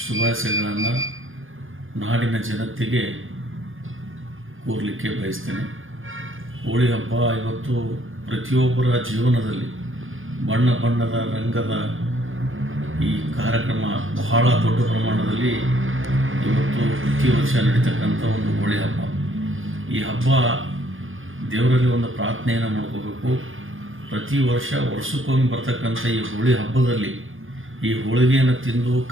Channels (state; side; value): late; left; 0.58 ms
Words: ಶುಭಾಶಯಗಳನ್ನು ನಾಡಿನ ಜನತೆಗೆ ಕೋರಲಿಕ್ಕೆ ಬಯಸ್ತೇನೆ. ಹೋಳಿ ಹಬ್ಬ ಇವತ್ತು ಪ್ರತಿಯೊಬ್ಬರ ಜೀವನದಲ್ಲಿ ಬಣ್ಣ ಬಣ್ಣದ ರಂಗದ ಈ ಕಾರ್ಯಕ್ರಮ ಬಹಳ ದೊಡ್ಡ ಪ್ರಮಾಣದಲ್ಲಿ ಇವತ್ತು ಪ್ರತಿ ವರ್ಷ ನಡೀತಕ್ಕಂಥ ಒಂದು ಹೋಳಿ ಹಬ್ಬ. ಈ ಹಬ್ಬ ದೇವರಲ್ಲಿ ಒಂದು ಪ್ರಾರ್ಥನೆಯನ್ನು ಮಾಡ್ಕೋಬೇಕು. ಪ್ರತಿ ವರ್ಷಕ್ಕೊಮ್ಮೆ ಬರ್ತಕ್ಕಂಥ ಈ ಹೋಳಿ ಹಬ್ಬದಲ್ಲಿ ಈ ಹೋಳಿಗೆಯನ್ನು ತಿಂದು